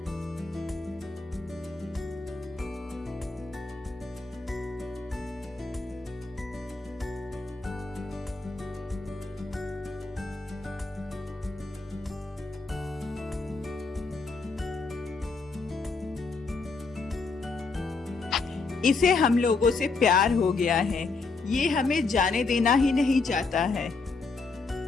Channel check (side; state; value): right; quieter; 4.1 dB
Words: इसे हम लोगों से प्यार हो गया है। ये हमें जाने देना ही नहीं चाहता है।